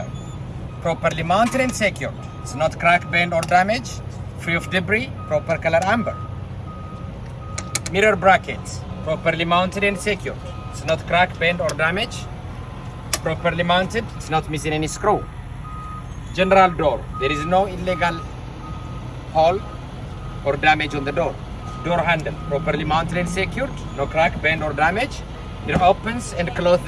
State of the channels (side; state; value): both; identical; correlation 1.00